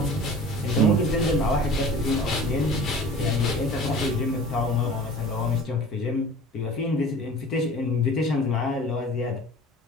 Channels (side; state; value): both; normal; correlation 0.42